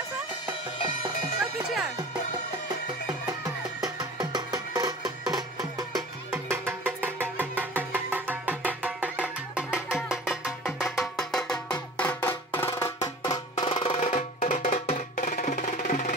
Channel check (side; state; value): both; normal; correlation 0.42